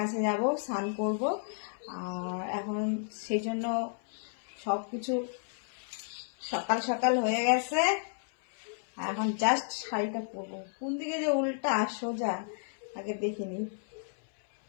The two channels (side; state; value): right; silent; 56 dB below the other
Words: যাব, স্নান করব। আর এখন সেই জন্য সবকিছু সকাল সকাল হয়ে গেছে। এখন জাস্ট শাড়িটা পরবো। কোন দিকে যে উল্টা সোজা আগে দেখিনি।